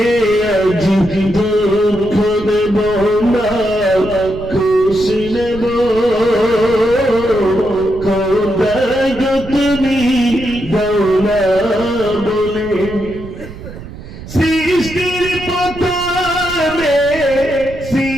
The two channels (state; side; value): noise; right; rumble, 13 dB below the sound